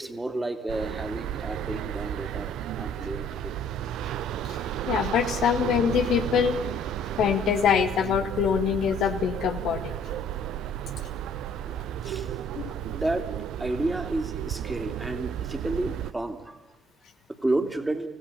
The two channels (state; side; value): normal; both; correlation 0.59